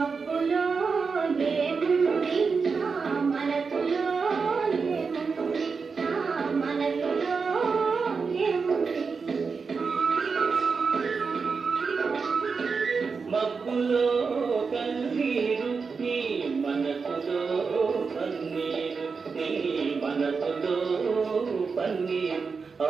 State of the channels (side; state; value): left; quieter; 5.1 dB